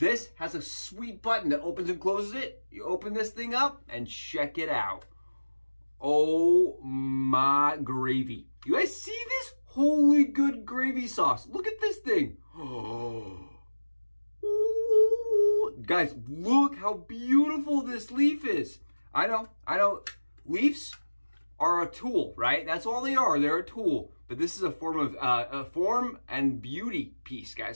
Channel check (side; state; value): both; inverted; correlation -1.00